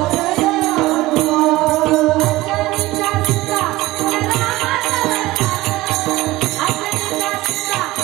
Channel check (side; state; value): left; quieter; 18.6 dB